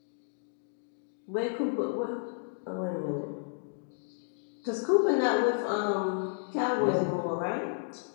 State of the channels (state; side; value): silent; right; digital silence